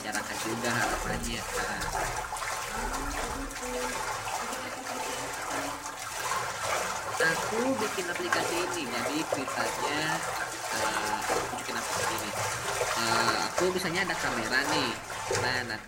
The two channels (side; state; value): both; identical; correlation 1.00